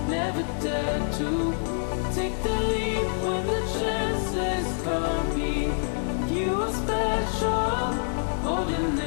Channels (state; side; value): silent; right; digital silence